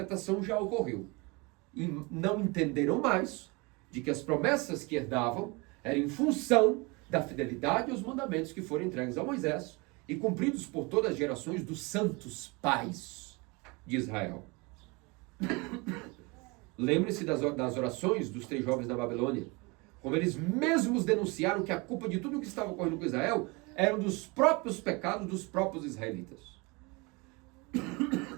já ocorreu. E não entenderam mais de que as promessas que herdavam Era em função da fidelidade aos mandamentos que foram entregues a Moisés e cumpridos por todas as gerações dos santos pais de Israel. Lembre-se das orações dos 3 jovens da Babilônia, como eles mesmos denunciaram que a culpa de tudo o que estava ocorrendo com Israel eram dos próprios pecados dos próprios israelitas.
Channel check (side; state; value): left; quieter; 27.2 dB